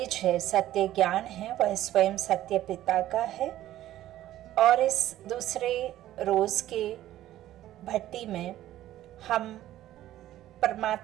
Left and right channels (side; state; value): left; quieter; 13.7 dB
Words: है, सत्य ज्ञान है, वह स्वयं सत्य पिता का है। और इस दूसरे रोज के भट्टी में हम